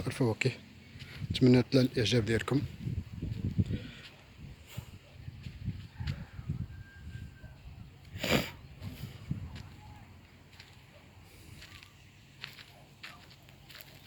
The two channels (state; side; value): identical; both; correlation 1.00